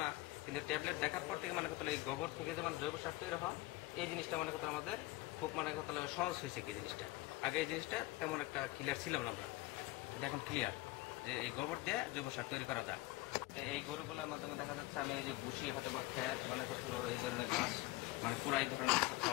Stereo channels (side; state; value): right; quieter; 19.0 dB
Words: না, কিন্তু ট্যাবলেট দেখার পর থেকে কথা এই গোবর থেকে যে জৈব সার তৈরি হয়, এই জিনিসটা কথা আমাদের খুব কথা সহজ হয়েছে। কি জিনিসটা আগে এই জিনিসটা তেমন একটা ক্লিয়ার ছিলাম না আমরা, এটা এখন ক্লিয়ার যে এই গোবর দিয়ে জৈব সার তৈরি করা যায়। তো এই গরুগুলোর মাধ্যমে দেখা যাচ্ছে আমি এই যে বুসি হয়তো বা খ্যার কথা হলো এই ধরনের গাছ পুরা এই ধরনের কিছু